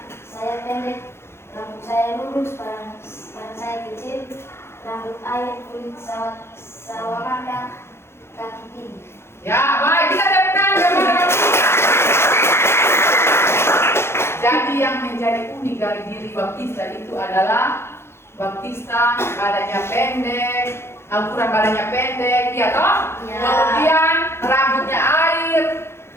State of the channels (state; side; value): late; right; 0.12 ms